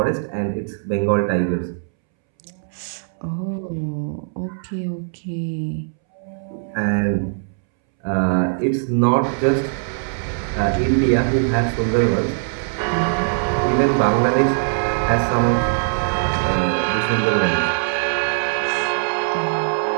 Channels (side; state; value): left; silent; 65 dB below the other